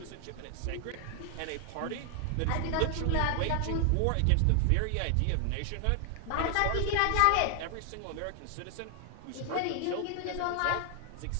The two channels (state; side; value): different; both; correlation 0.00